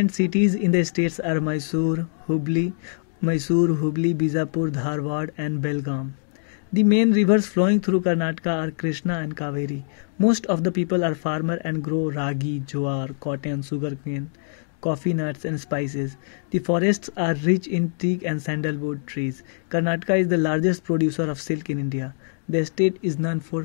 cities in the states are Mysore, Hubli, Bijapur, Dharwad and Belgaum. The main rivers flowing through Karnataka are Krishna and Kaveri. Most of the people are farmers and grow ragi, jowar, cotton, sugarcane, coffee nuts and spices. The forests are rich in teak and sandalwood trees. Karnataka is the largest producer of silk in India. The state is known for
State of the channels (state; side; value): silent; right; digital silence